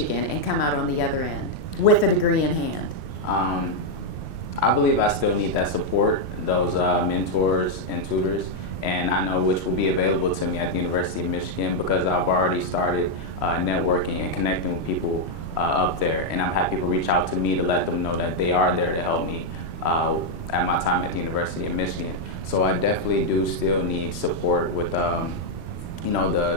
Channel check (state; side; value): late; left; 3.1 ms